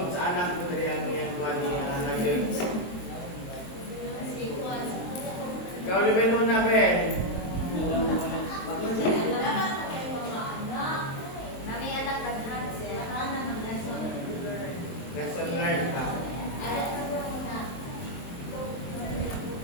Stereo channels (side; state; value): right; late; 23 ms